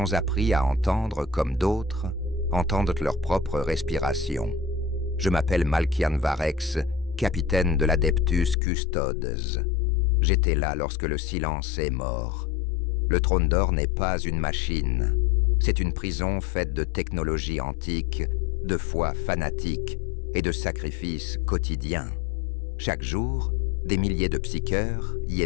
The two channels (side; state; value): right; drops out; at 8.6 s